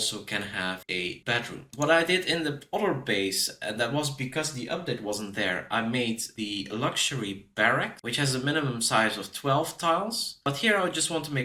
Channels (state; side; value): identical; both; correlation 1.00